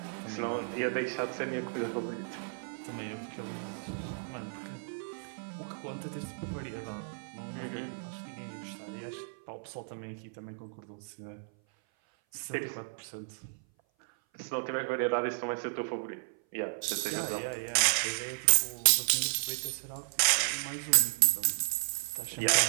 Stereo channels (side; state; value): left; silent; 56 dB below the other